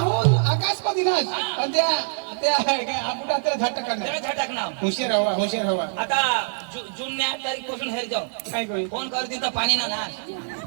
आकाशमध्ये नाच आणि त्या आपटा त्याला झाट करणार त्याला झटक नाव हुशार हवा आता जून 8 तारीख पासून हेर जाऊ काय कोई फोन करते तर पाणी ना नाश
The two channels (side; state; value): left; silent; 58 dB below the other